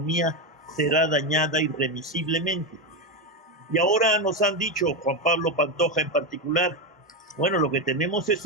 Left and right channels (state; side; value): normal; both; correlation 0.11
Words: será dañada irremisiblemente. Y ahora nos han dicho, Juan Pablo Pantoja en particular, bueno, lo que tenemos